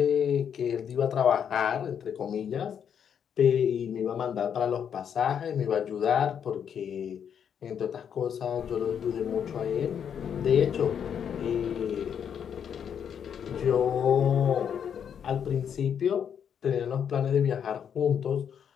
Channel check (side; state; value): right; quieter; 8.1 dB